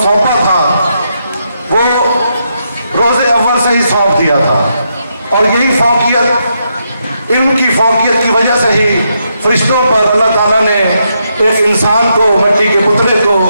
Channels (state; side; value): inverted; both; correlation -0.81